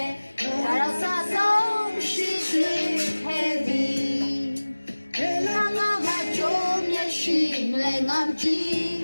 ဒါတော့စဆုံးရှိရှိခဲ့ဒီဘယ်လိုငါမကြုံမျက်ရှိလဲငါတီး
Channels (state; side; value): inverted; both; correlation -1.00